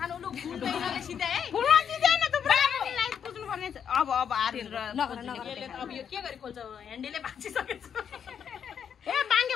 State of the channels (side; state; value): right; quieter; 7.9 dB